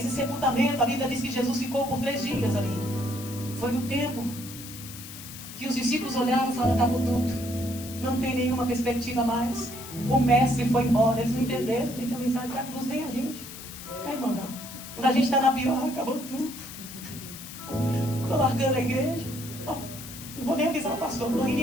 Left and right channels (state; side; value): noise; left; hiss, 13 dB below the sound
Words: sepultamento, a Bíblia diz que Jesus ficou por 3 dias ali. Foi o tempo que os discípulos olharam e falaram, acabou tudo. Não tem nenhuma perspectiva mais. O mestre foi embora. Eles não entenderam, gente, a mensagem da cruz, nem a gente. É, irmão, não. Quando a gente está na pior, acabou tudo. Estou largando a igreja. Oh, não vou nem avisar o pastor, estou indo